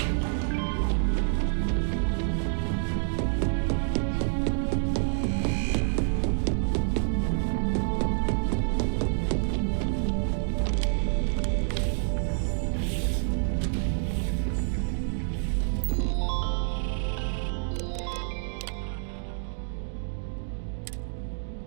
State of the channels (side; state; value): left; silent; digital silence